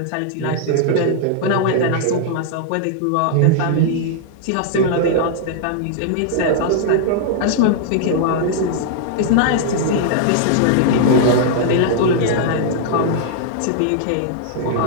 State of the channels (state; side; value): different; both; correlation -0.01